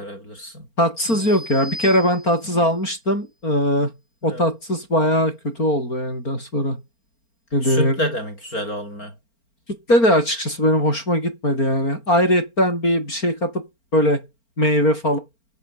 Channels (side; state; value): right; late; 4.4 ms